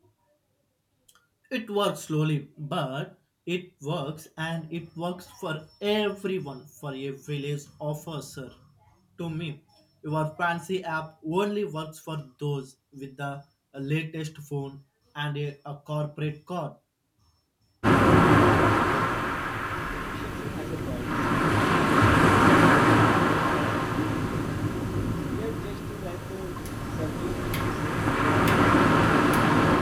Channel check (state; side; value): identical; both; correlation 1.00